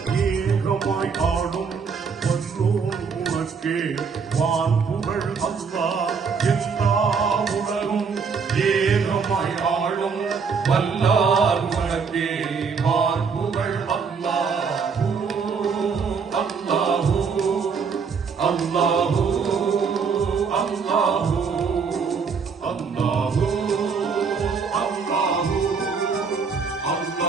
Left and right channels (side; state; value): left; quieter; 5.6 dB